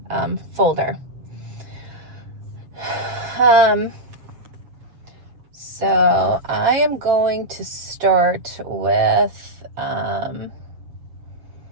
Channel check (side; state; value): left; late; 7.6 ms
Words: folder. So I am going to start with, I